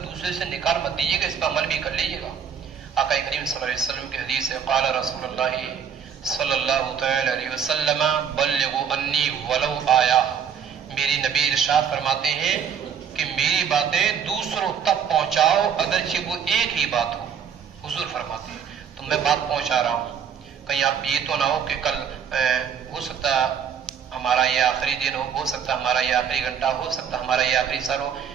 سے نکال مت دیجیے گا, اس پہ عمل بھی کر لیجیے گا. آقا کریم صلی اللہ علیہ وسلم کی حدیث ہے, قال رسول اللہ صلی اللہ تعالی علیہ وسلم بلغوا انی ولو آیا. میری نبی ارشاد فرماتے ہیں کہ میری باتیں دوسروں تک پہنچاؤ اگرچہ وہ ایک ہی بات ہو. حضور فرماتے ہیں تو میں بات پہنچا رہا ہوں, کہیں آپ یہ تو نہ ہو کہ کل ہو سکتا ہمارا یہ آخری دن ہو سکتا ہمارا یہ آخری گھنٹہ, ہو سکتا ہمارا یہ آخری سر ہو.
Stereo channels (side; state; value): left; quieter; 7.7 dB